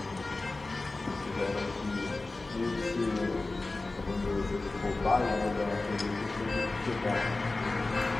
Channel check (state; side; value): quieter; right; 3.2 dB